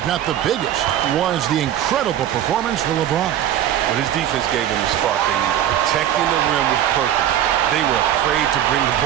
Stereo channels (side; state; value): left; quieter; 11.1 dB